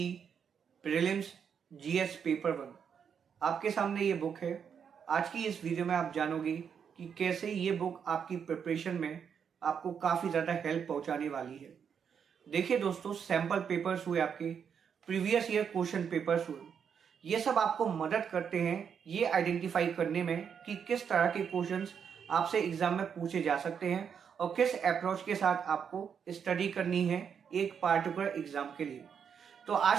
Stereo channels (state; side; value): quieter; left; 7.3 dB